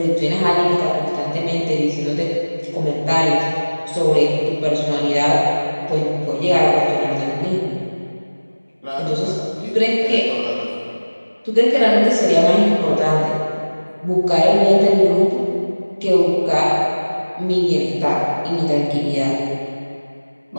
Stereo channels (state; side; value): inverted; both; correlation -1.00